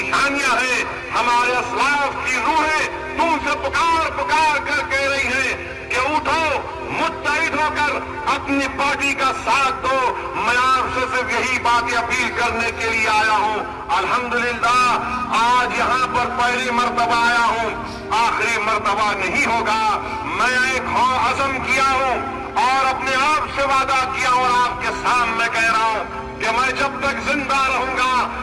हैं, हमारे असलाफ की रूहें तुमसे पुकार पुकार कर कह रही हैं कि उठो, मुत्तहिद होकर अपनी पार्टी का साथ दो। मैं आपसे सिर्फ यही बातें अपील करने के लिए आया हूं। अल्हम्दुलिल्लाह आज यहाँ पर पहली मर्तबा आया हूं, आखिरी मर्तबा नहीं होगा। मैं एक अज़म किया हूं और अपने आप से वादा किया और आपके सामने कह रहा हूं कि मैं जब तक जिंदा रहूंगा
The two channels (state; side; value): identical; both; correlation 1.00